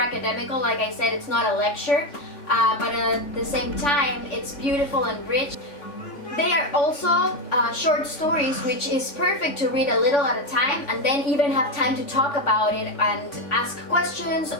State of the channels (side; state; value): right; late; 3.5 ms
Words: like I said, it's not a lecture, but at the same time it's beautiful and rich. They are also short stories, which is perfect to read a little at a time and then even have time to talk about it and ask questions,